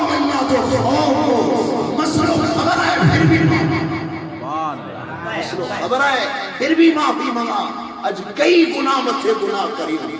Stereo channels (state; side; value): identical; both; correlation 1.00